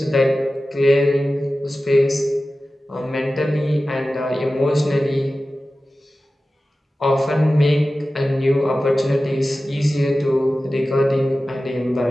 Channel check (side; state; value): both; normal; correlation 0.95